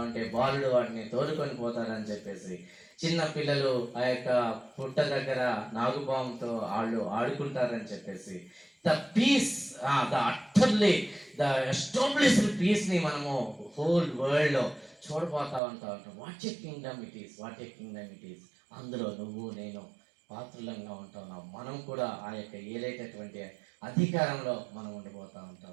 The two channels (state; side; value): drops out; left; at 15.6 s